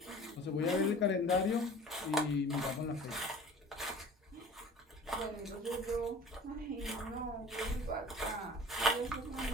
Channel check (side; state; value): both; normal; correlation 0.43